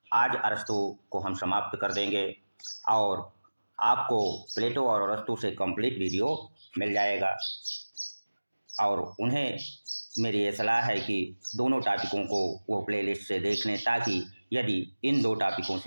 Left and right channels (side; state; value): both; inverted; correlation -1.00